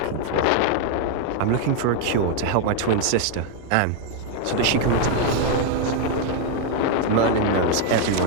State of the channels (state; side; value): different; both; correlation 0.01